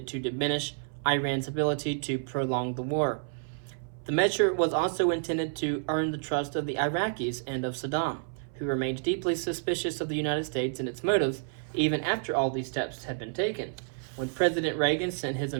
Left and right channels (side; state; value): left; silent; 58 dB below the other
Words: to diminish Iran's ability to prolong the war. The measure was also intended to earn the trust of the Iraqis and of Saddam, who remained deeply suspicious of the United States and its motives even after all these steps had been taken. When President Reagan sent his